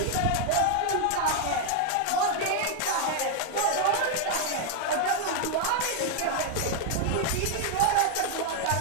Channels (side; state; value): both; different; correlation 0.00